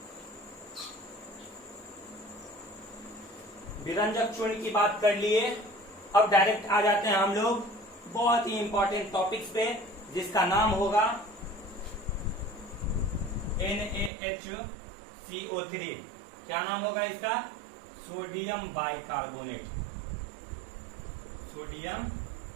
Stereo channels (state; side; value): drops out; left; at 14.1 s